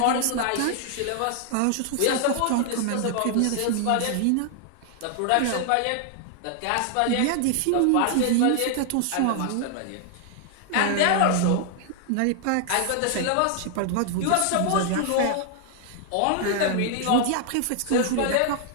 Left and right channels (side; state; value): both; different; correlation 0.00